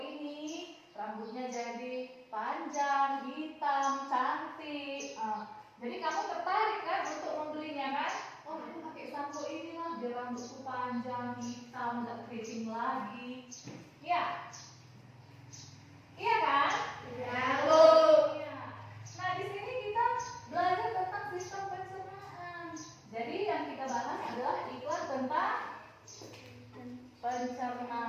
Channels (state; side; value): identical; both; correlation 1.00